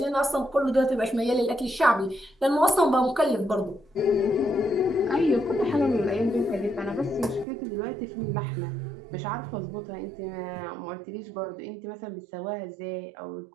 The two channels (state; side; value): drops out; left; at 7.5 s